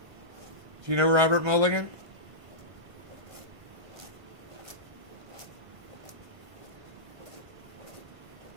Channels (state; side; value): late; left; 1.5 ms